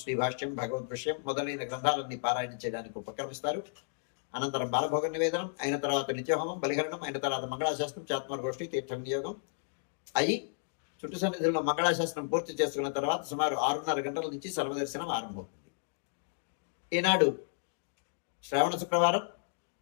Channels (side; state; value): right; silent; digital silence